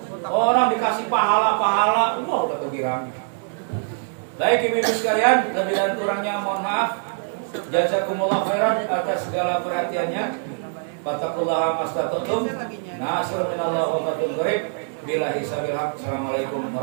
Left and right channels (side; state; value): left; silent; 61 dB below the other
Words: Orang dikasih pahala, wah udah tergirang. Baik ibu-ibu sekalian, lebih dan kurangnya mohon maaf. Jazakumullah khairan atas segala perhatiannya. Fattaqullaha mastata'tum. Nasrun minallahi wa fathun qarib. Billahi sabil haq. Assalamualaikum